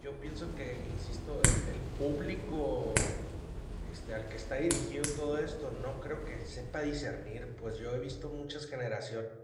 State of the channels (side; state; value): both; identical; correlation 1.00